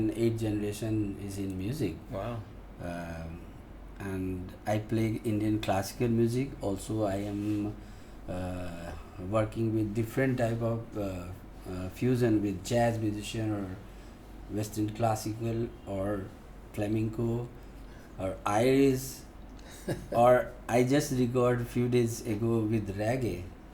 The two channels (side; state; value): both; identical; correlation 1.00